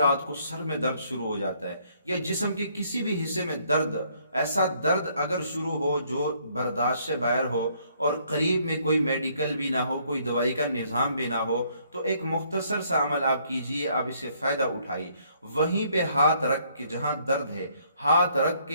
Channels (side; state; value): both; inverted; correlation -0.66